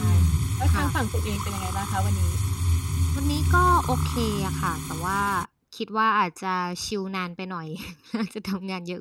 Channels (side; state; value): both; identical; correlation 1.00